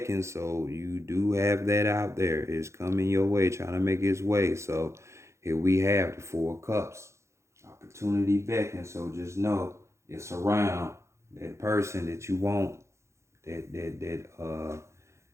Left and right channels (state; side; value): late; left; 0.14 ms